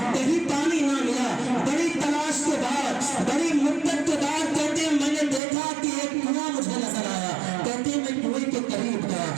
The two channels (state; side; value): drops out; left; at 5.4 s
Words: کہیں پانی نہ ملا. بڑی تلاش کے بعد، بڑی مدت کے بعد کہتے ہیں میں نے دیکھا کہ ایک کنواں مجھے نظر آیا. کہتے ہیں میں کنویں کے قریب